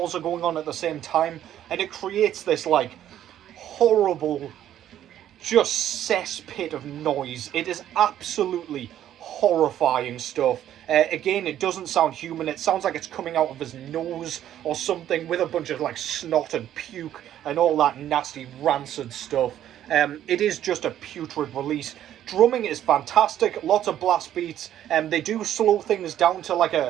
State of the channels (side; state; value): left; quieter; 11.4 dB